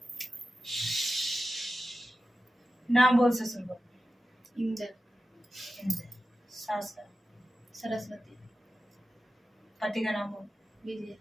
नाम बोल ससुर को। इंदर। सास का? सरस्वती। पति का नाम बोल। विजय।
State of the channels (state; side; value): normal; both; correlation 0.93